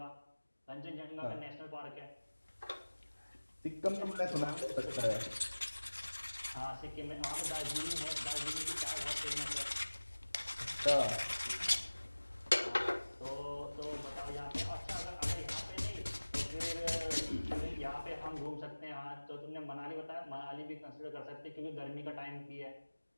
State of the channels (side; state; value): both; inverted; correlation -1.00